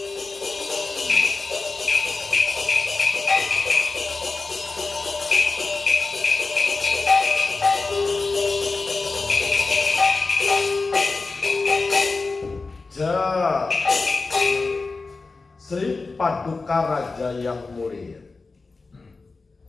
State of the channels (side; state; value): right; quieter; 3.9 dB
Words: Sri Paduka Raja yang mulia,